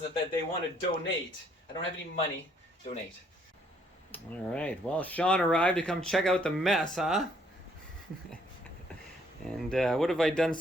that they want to donate, I don't have any money, donate. All right, well, Sean arrived to come check out the mess, huh? And what have I done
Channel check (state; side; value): normal; both; correlation 0.67